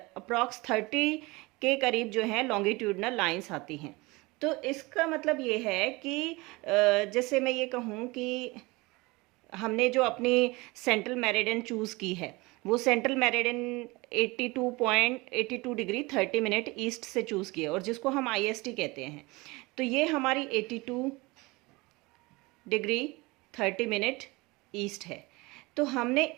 अप्रॉक्स 30 के करीब जो है लॉन्गिट्यूडनल लाइंस आती हैं। तो इसका मतलब ये है कि जैसे मैं ये कहूँ कि हमने जो अपनी सेंट्रल मेरिडियन चूज़ की है वो central meridian 82 degree 30 minute east से चूज़ किया, और जिसको हम IST कहते हैं। तो ये हमारी 82 डिग्री 30 मिनट ईस्ट है। तो हमने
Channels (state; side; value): quieter; left; 23.6 dB